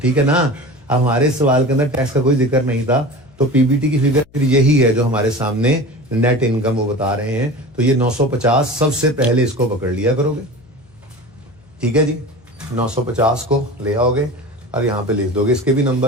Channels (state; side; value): noise; left; hum, 29 dB below the sound